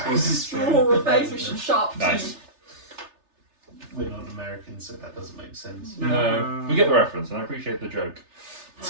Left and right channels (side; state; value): left; late; 3.3 ms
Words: Draw a face with some sharp Nice. teeth. We're not Americans, so that doesn't make sense. No, we get the reference, and I appreciate the joke.